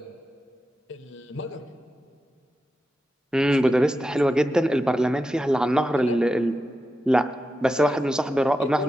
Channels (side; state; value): both; normal; correlation 0.90